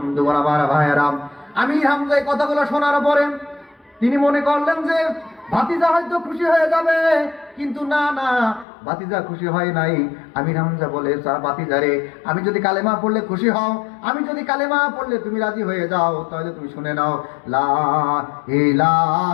আমার ভাইয়েরা, আমির হামজা এই কথাগুলো শোনার পরে তিনি মনে করলেন যে ভাতিজা হয়তো খুশি হয়ে যাবে, কিন্তু না না, ভাতিজা খুশি হয় নাই। আমির হামজা বলে, ভাতিজা রে, আমি যদি কালেমা পড়লে খুশি হও, আমি যদি কালেমা পড়লে তুমি রাজি হয়ে যাও, তাহলে তুমি শুনে নাও, লা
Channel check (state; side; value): drops out; right; at 8.7 s